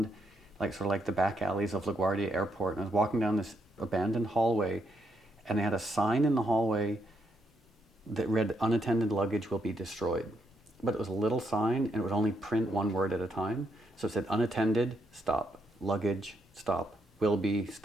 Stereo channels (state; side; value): normal; both; correlation 0.78